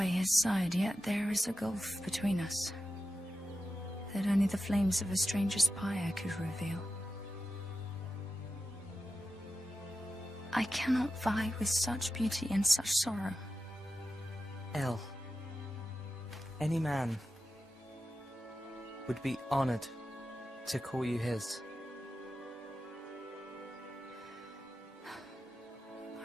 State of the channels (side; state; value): both; normal; correlation 0.91